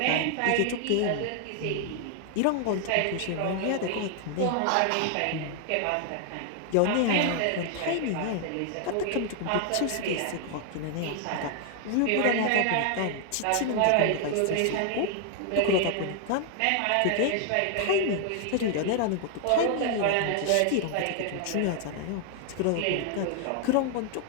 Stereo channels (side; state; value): both; different; correlation 0.00